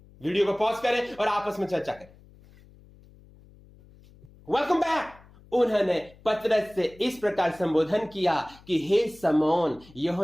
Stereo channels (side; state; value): left; noise; hum, 25 dB below the sound